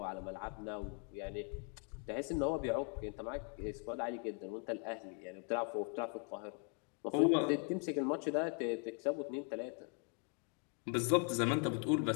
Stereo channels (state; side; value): quieter; right; 37.0 dB